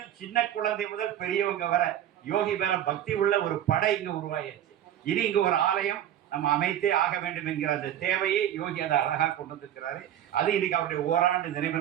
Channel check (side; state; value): left; quieter; 11.1 dB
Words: சின்ன குழந்தை முதல் பெரியவங்க வர யோகி மேல பக்தி உள்ள ஒரு படை இங்க உருவாயாச்சு. இனி இங்க ஒரு ஆலயம் நம்ம அமைத்தே ஆக வேண்டும் என்கிற அந்த தேவையை யோகி அதை அழகா கொண்டு வந்திருக்கிறாரு. அது இன்னைக்கு அவருடைய ஓராண்டு நினைவு